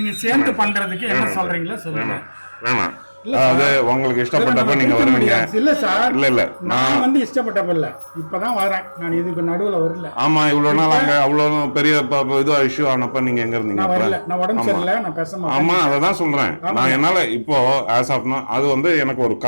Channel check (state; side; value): inverted; both; correlation -1.00